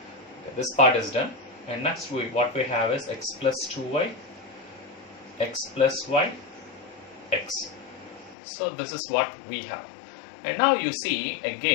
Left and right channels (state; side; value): drops out; right; at 8.3 s